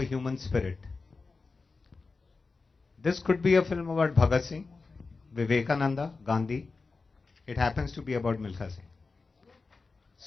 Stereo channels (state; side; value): quieter; right; 4.1 dB